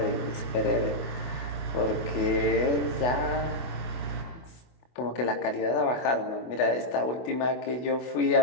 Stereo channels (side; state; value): right; late; 24 ms